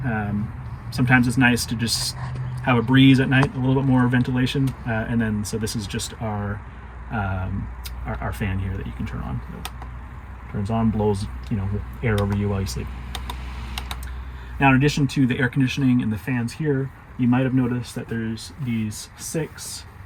sometimes it's nice to just have a breeze at night, a little bit more ventilation, and then so this is just our fan here that you can turn on. So turns on, blows air over you while you sleep. Now, in addition to the air conditioning and the fans here, you might have noticed that there's these 6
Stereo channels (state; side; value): identical; both; correlation 1.00